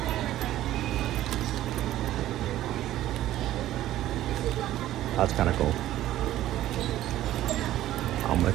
That's kind of cool. How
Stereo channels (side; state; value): left; quieter; 13.9 dB